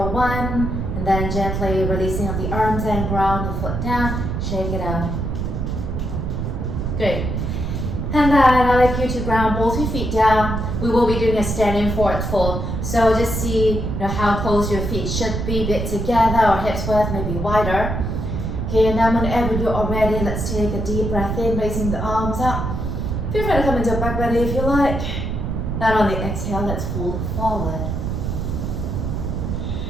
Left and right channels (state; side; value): noise; right; rumble, 2 dB below the sound